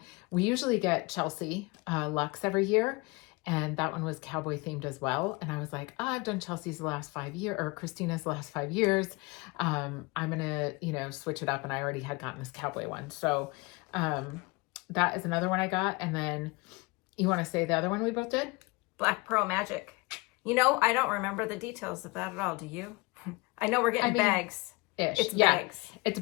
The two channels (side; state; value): right; quieter; 25.7 dB